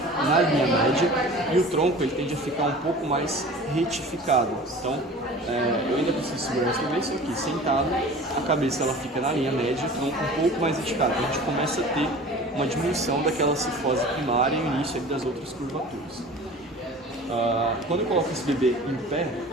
na linha média e o tronco ele tende a ficar um pouco mais retificado. Então, eu ainda preciso segurar esse bebê, só que sentado, a cabeça ela fica na linha média e o tronco um pouco mais retificado. Então, a gente começa a ter uma diminuição daquela cifose primária e o início das outras curvaturas. Quando eu coloco esse bebê em pé,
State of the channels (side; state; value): both; normal; correlation 0.41